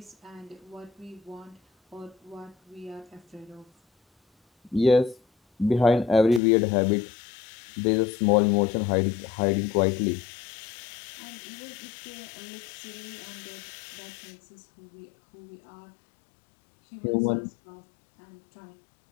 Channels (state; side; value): drops out; right; at 6.4 s